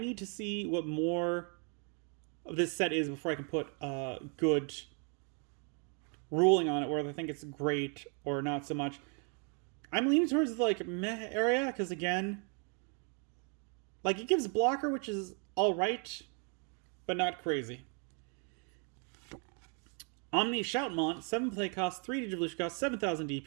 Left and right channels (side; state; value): left; quieter; 38.9 dB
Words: to see what more of this set is before I can put a good ruling on it, whether I think it's great or not so much. I'm leaning towards the meh area because again, it gives blocker, which is all right, but not crazy. Omni Shoutmon, 7 play cost, 3 Digivolution cost, 7,000